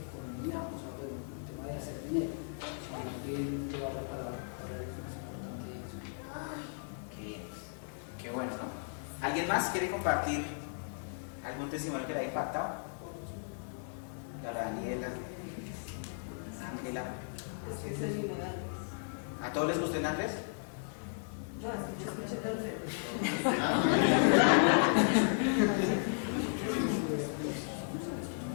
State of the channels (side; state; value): right; silent; digital silence